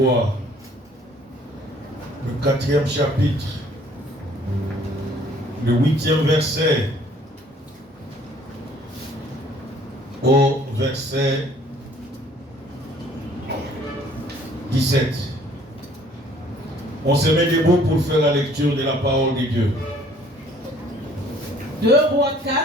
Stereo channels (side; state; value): both; normal; correlation 0.57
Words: le 4e chapitre, le 8e verset au verset 17. On se met debout pour faire la lecture de la parole de Dieu. 2 Rois